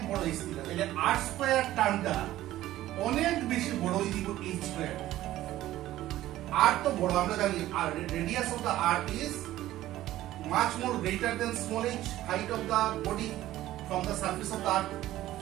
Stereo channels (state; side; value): quieter; left; 14.7 dB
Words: বড় h থেকে, তাহলে r স্কয়ার টার্মটা অনেক বেশি বড় হয়ে দিব h স্কয়ার। r তো বড় আমরা জানি, আর radius of the r is much more greater than small h, height of the body from the surface of the earth।